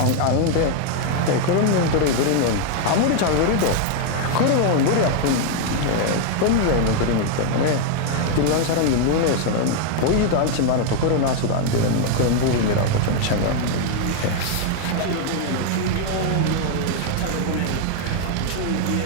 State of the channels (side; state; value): both; different; correlation 0.00